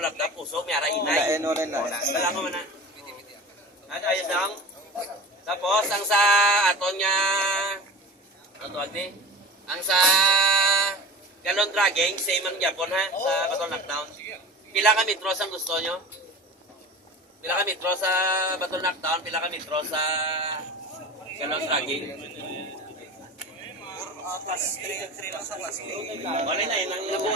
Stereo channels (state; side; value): normal; both; correlation 0.34